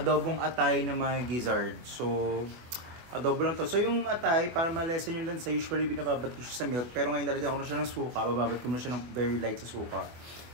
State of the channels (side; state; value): left; late; 24 ms